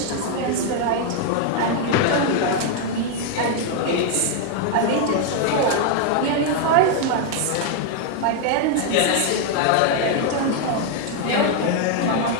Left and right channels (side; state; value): both; different; correlation 0.00